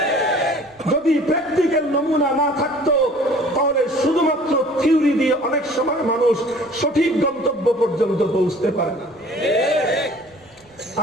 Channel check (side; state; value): right; noise; rumble, 30 dB below the sound